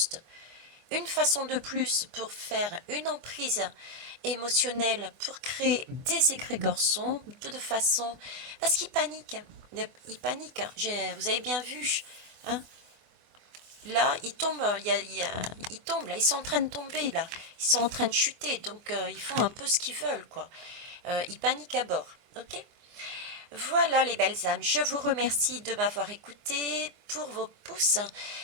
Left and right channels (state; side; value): late; left; 24 ms